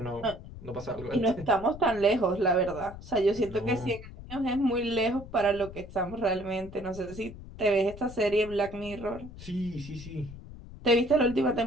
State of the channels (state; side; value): noise; left; rumble, 15 dB below the sound